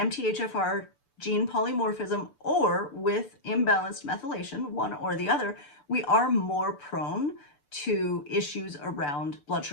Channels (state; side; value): late; right; 6.9 ms